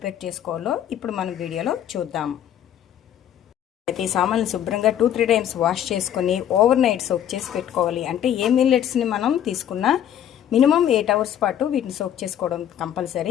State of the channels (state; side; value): quieter; right; 10.4 dB